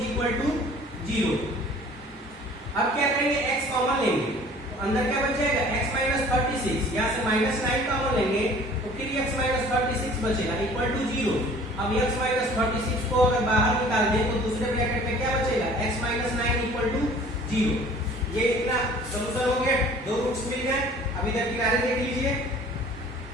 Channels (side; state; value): both; normal; correlation 0.50